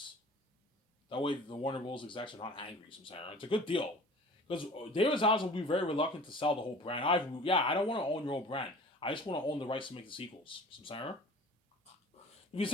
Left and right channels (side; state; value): both; normal; correlation 0.44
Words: That way the Warner Bros. Execs are not angry, Samsara. It's a good deal. Because David Zaslav will be very reluctant to sell the whole brand. I don't want to own your whole brand. I just want to own the rights to make the sequels, Samsara. If he